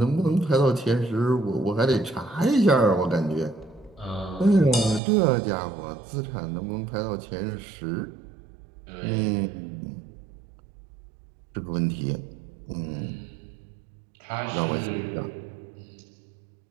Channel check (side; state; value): left; drops out; at 5.0 s